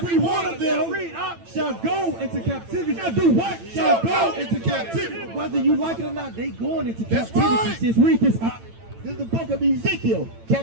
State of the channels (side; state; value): left; late; 9.0 ms